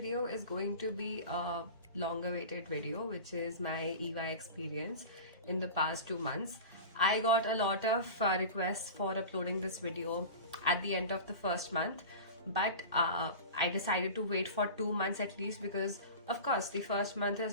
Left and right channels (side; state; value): both; inverted; correlation -0.32